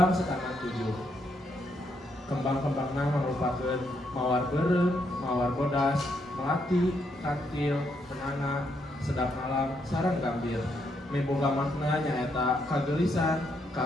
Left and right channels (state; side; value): normal; both; correlation 0.77